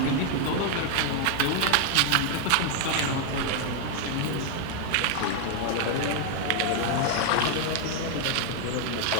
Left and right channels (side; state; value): both; different; correlation 0.00